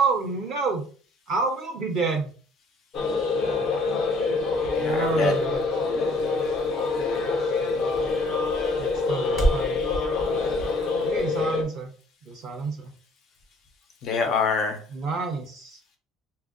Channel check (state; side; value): normal; both; correlation 0.58